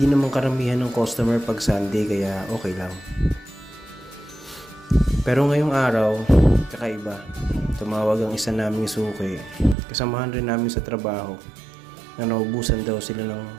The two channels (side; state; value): left; drops out; at 9.8 s